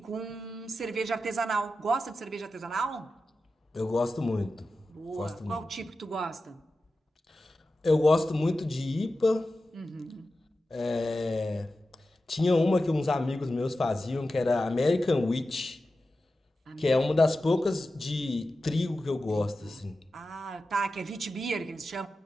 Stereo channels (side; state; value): both; normal; correlation 0.92